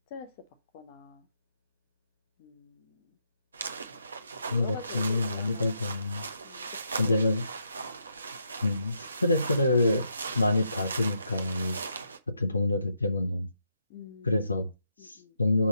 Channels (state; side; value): inverted; both; correlation -0.79